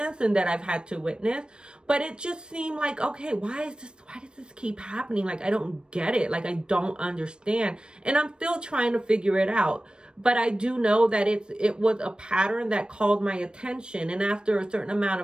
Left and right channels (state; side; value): late; left; 0.053 ms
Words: and that I've had to witness. But it just seemed like, okay, why does this keep happening? Like, I don't get it. Like, I don't understand. And I'm still trying to figure it out. But I do know that it was a pattern that called my attention. And after a certain amount